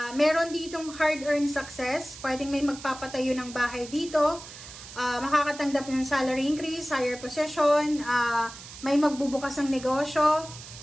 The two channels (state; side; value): noise; right; hiss, 15 dB below the sound